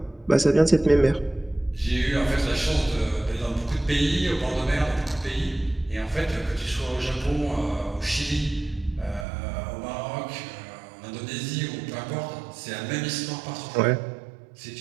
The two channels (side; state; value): left; drops out; at 9.2 s